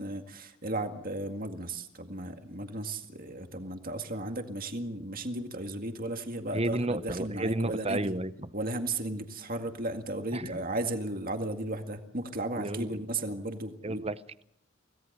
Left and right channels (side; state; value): both; normal; correlation 0.41